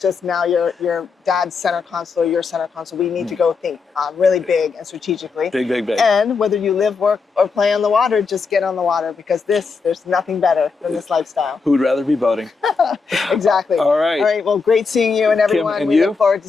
now your dad's center console, your center console. We need to go think really big and strategically. Big, big, big. And whether you live, work, or play on the water, just get on the water, because there's nothing better than this lifestyle. Who would rather be boating? Exactly. All right. All right. Well, great seeing you and everyone. Kim, and we you? look forward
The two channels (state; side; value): quieter; right; 4.8 dB